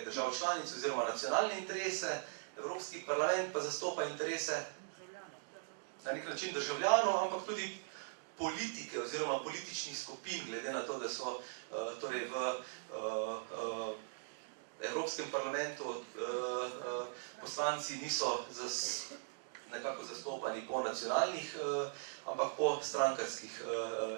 držav članic oziroma nacionalne interese, Evropski parlament pa zastopa interese na nek način državljanov, ampak tudi politike oziroma političnih skupin, glede na to, da so torej v Evropskem parlamentu poslanci niso nekako zastopani po nacionalnih, ampak po strankarskih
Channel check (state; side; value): silent; left; digital silence